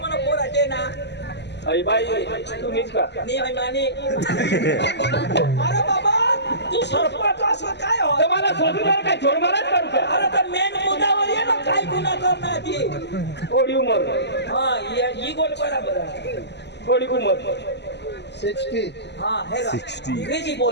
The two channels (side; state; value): right; late; 0.50 ms